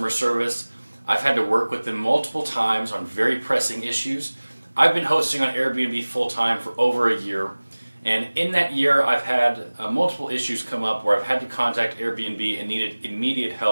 service. I've had to work with them multiple times on very pressing issues. I've been hosting on Airbnb full-time for over a year, and in that year I've had multiple issues come up where I've had to contact Airbnb and needed immediate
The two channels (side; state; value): both; inverted; correlation -1.00